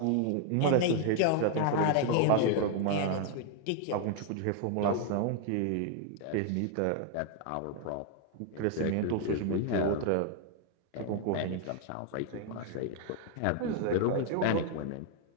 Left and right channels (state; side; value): different; both; correlation 0.00